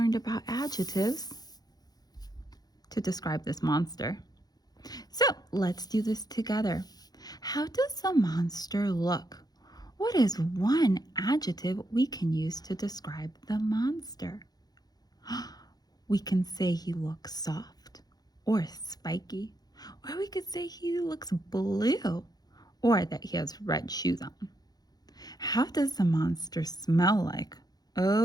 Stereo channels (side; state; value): right; late; 0.19 ms